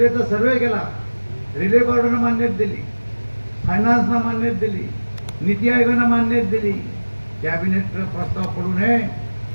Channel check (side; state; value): both; inverted; correlation -1.00